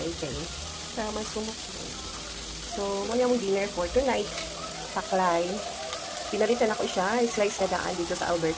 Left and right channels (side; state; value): both; identical; correlation 1.00